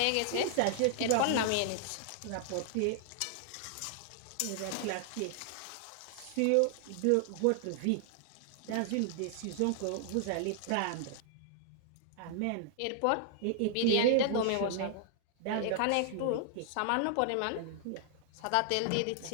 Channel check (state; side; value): different; both; correlation -0.01